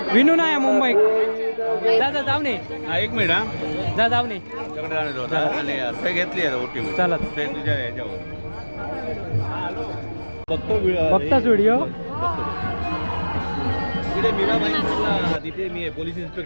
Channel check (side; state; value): both; inverted; correlation -1.00